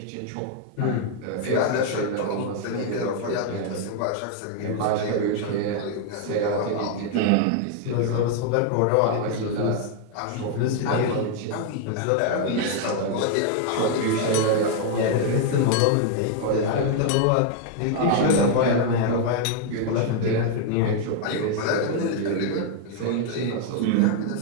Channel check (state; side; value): different; both; correlation 0.00